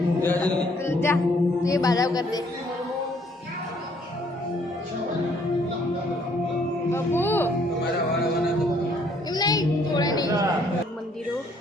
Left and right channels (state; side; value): normal; both; correlation 0.65